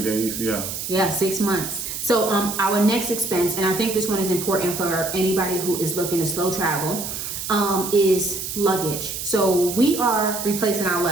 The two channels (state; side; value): noise; right; hiss, 6 dB below the sound